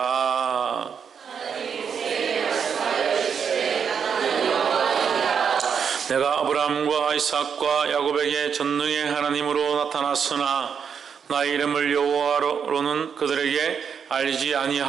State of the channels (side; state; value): left; quieter; 7.0 dB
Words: 내가 아브라함과 이삭과 야곱에게 전능의 하나님으로 나타났으나 나의 이름을 여호와로는 그들에게 알리지